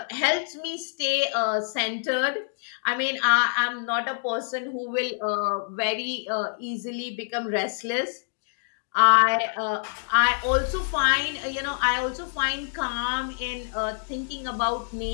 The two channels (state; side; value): silent; right; digital silence